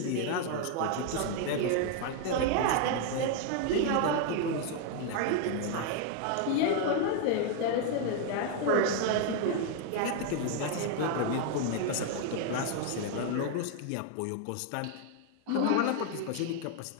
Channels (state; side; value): different; both; correlation 0.00